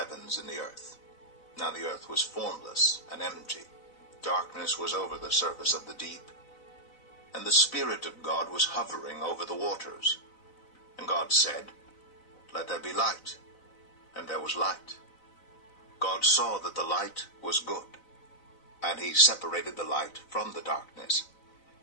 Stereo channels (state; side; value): late; right; 4.0 ms